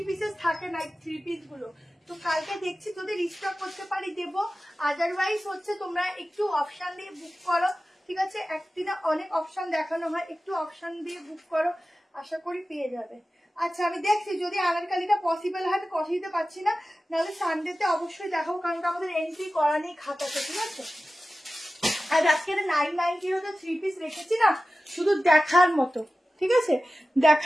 পিসেস থাকে না 3 পিস গুলো, তো কালকে দেখছি যদি রিস্টক করতে পারি দেবো, আদারওয়াইজ হচ্ছে তোমরা একটু অপশন দিয়ে বুক করো, ঠিক আছে, একদিনে অনেক অপশন দেখানো হয়, একটু অপশন দিয়ে বুক করো, আশা করি পেয়ে যাবে। আচ্ছা আমি দেখছি যদি আনারকালিটা পসিবল হয়, তো কথা দিতে পারছি না, নাহলে সানডেতে অবশ্যই দেখাবো, কারণ আমাদের এন্ট্রি করা নেই খাতাতে, ঠিক আছে। আর আজকে 990 তো 3 পিস রেখেছি না, শুধু দেখার মতো, ঠিক আছে,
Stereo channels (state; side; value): normal; both; correlation 0.95